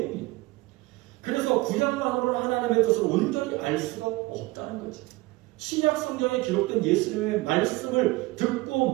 그래서 구약만으로는 하나님의 뜻을 온전히 알 수가 없다는 거죠. 신약 성경에 기록된 예수님의 말씀을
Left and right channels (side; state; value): left; quieter; 21.2 dB